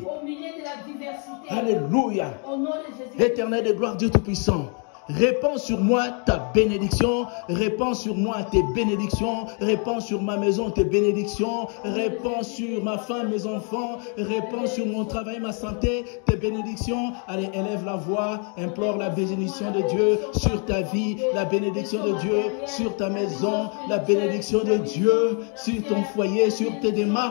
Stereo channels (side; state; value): right; quieter; 39.5 dB